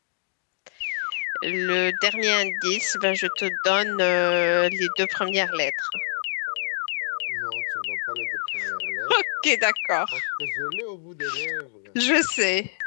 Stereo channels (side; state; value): right; silent; digital silence